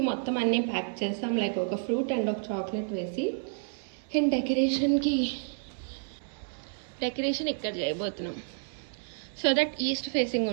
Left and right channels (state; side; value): silent; left; digital silence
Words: మొత్తం అన్నీ ప్యాక్ చేస్తాం, లైక్ ఒక ఫ్రూట్ అండ్ ఒక చాక్లెట్ వేసి. అండ్ డెకరేషన్ ఇక్కడ చేయబోతున్నాం సో దట్ ఈస్ట్ ఫేసింగ్